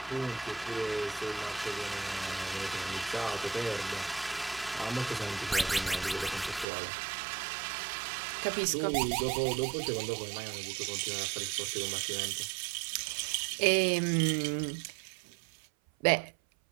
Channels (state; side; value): drops out; left; at 6.7 s